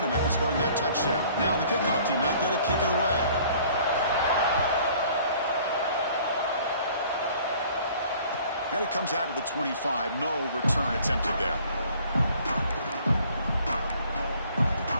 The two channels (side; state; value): both; inverted; correlation -0.54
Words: after scoring that touchdown. Now the kickoff team out there to kick it away. And it comes out to the 25. No return attempted there.